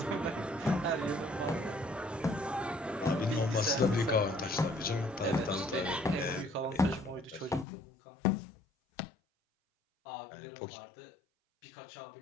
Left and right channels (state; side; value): drops out; right; at 7.7 s